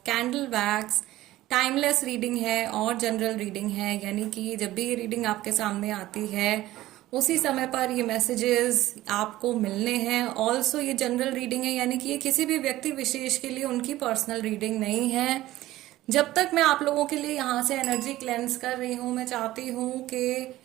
candle wax. Timeless reading है और जनरल रीडिंग है, यानी कि जब भी ये रीडिंग आपके सामने आती है उसी समय पर ये मैसेजेस आपको मिलने हैं। ऑल्सो ये जनरल रीडिंग है, यानी कि ये किसी भी व्यक्ति विशेष के लिए उनकी पर्सनल रीडिंग नहीं है। जब तक मैं आप लोगों के लिए यहाँ से एनर्जी क्लेंस कर रही हूँ, मैं चाहती हूँ कि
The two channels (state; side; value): quieter; left; 15.9 dB